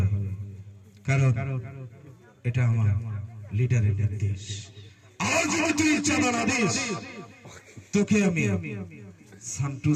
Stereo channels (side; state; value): both; identical; correlation 1.00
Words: কারণ এটা আমার লিডারের নির্দেশ। আর যদি তুই চাঁদা না দিস তোকে আমি